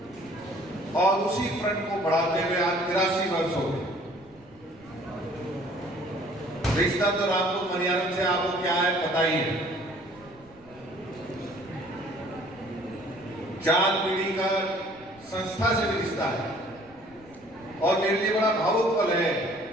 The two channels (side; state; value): right; noise; rumble, 27 dB below the sound